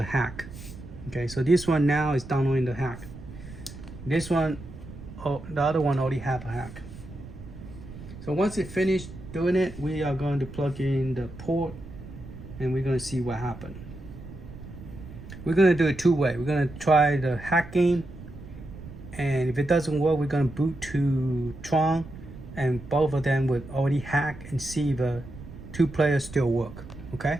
hack. Okay. So this one now is downloading the hack. This one, oh, the other one already have a hack. So once it finished doing it, we are going to plug in the port and we're going to see what happened. We're going to do it two-way. We're going to try the hack game, and if it doesn't work, we're going to boot to Tron, and both of them would already hack and see if the two players still work. Okay?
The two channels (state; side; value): noise; right; rumble, 14 dB below the sound